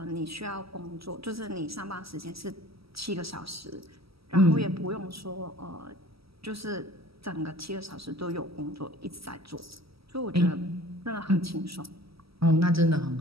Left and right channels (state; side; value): late; left; 0.76 ms